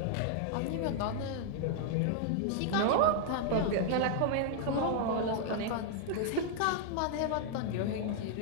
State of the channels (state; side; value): different; both; correlation 0.00